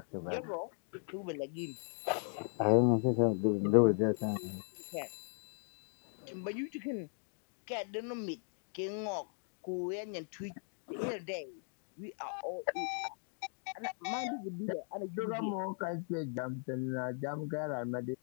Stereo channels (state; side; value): silent; right; 53 dB below the other